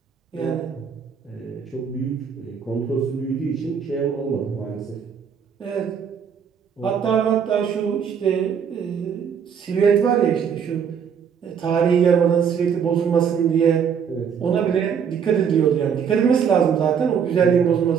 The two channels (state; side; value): quieter; left; 7.3 dB